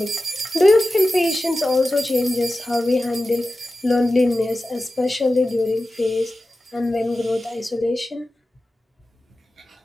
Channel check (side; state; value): both; normal; correlation 0.94